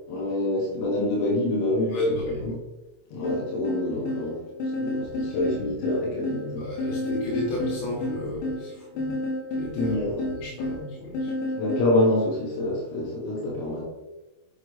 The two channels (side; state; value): right; late; 26 ms